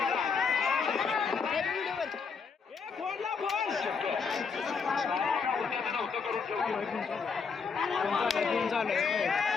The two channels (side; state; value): right; quieter; 5.5 dB